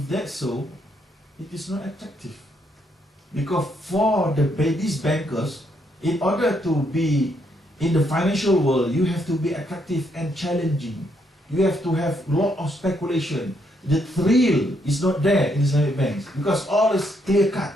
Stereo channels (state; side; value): normal; both; correlation 0.74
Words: that's so, it is not attractive. Because for these bankers, in order to be in the financial world, you have to be attractive and challenging. You have to have a lot of speculation. The thrill is not there in Islamic banks because all is clear cut.